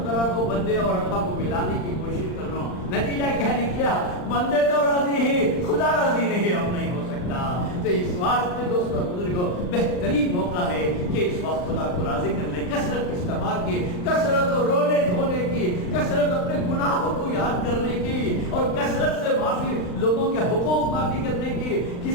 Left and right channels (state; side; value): late; right; 39 ms